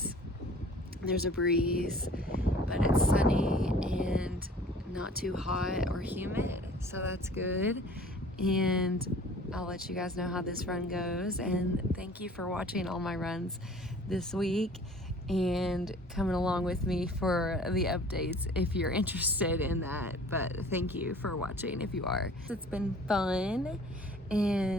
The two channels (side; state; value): both; normal; correlation 0.49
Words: There's a breeze, but it's sunny and not too hot or humid, so that's good. And I'll let you guys know how this run goes. And thank you for watching all my runs this week and coming along with me for the updates if you're interested in that. But thank you for watching if you are. It's been fun,